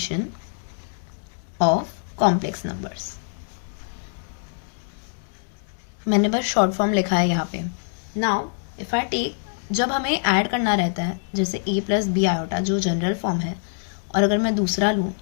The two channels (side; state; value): right; silent; digital silence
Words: of complex numbers. मैंने बस शॉर्ट फॉर्म लिखा है यहाँ पे। नाउ इफ आई टेक, जब हमें ऐड करना रहता है जैसे a + b आयोटा जो जनरल फॉर्म है, और अगर मैं दूसरा लूँ,